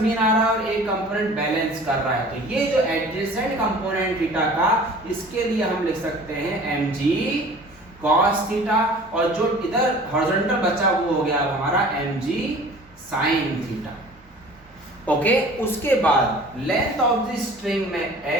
मीन आ रहा है और एक कंपोनेंट बैलेंस कर रहा है, तो ये जो एडजेसेंट कंपोनेंट थीटा का, इसके लिए हम लिख सकते हैं mg cos थीटा, और जो इधर हॉरिजॉन्टल बचा वो हो गया हमारा mg sin थीटा। ओके, उसके बाद लेंथ ऑफ द स्ट्रिंग में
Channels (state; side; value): normal; both; correlation 0.45